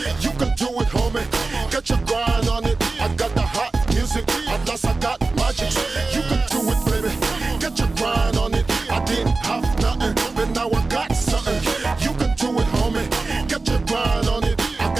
You can do it, homie. Get your grind on it. I got the hot music. At last I got magic. You can do it, baby. Get your grind on it. I didn't have nothing, but now I got something. You can do it, homie. Get your grind on it. I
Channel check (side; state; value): left; quieter; 3.6 dB